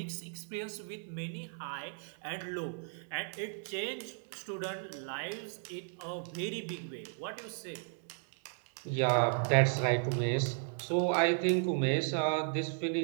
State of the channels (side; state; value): left; silent; 54 dB below the other